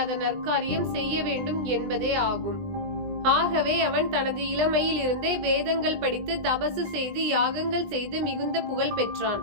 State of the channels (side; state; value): left; late; 20 ms